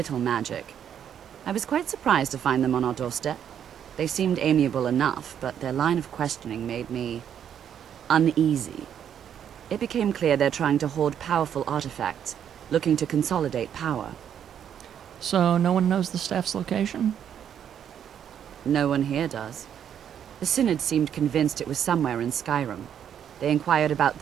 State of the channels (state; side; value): quieter; left; 9.0 dB